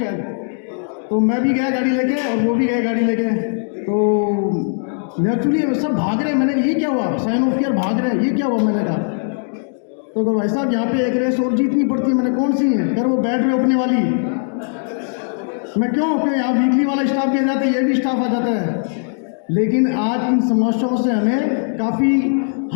तो मैं भी गया गाड़ी लेके और वो भी गए गाड़ी लेके। तो नेचुरली सब भाग रहे, मैंने ये क्या हुआ, साइन ऑफ ईयर भाग रहे, ये क्या हुआ, मैंने कहा। तो भाई साहब यहाँ पे एक रेस और जीतनी पड़ती है। मैंने कौन सी है? कर वो बैट रोकने वाली। मैं क्यों कि यहाँ वीकली वाला स्टाफ भी आ जाता है, ये भी स्टाफ आ जाता है। लेकिन आज इन समस्याओं से हमें काफ़ी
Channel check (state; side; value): silent; right; 65 dB below the other